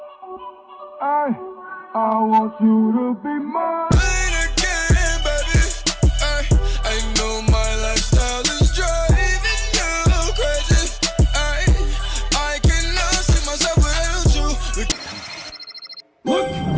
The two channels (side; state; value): both; identical; correlation 1.00